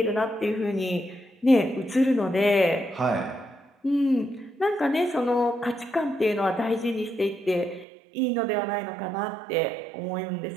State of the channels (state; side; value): drops out; left; at 7.9 s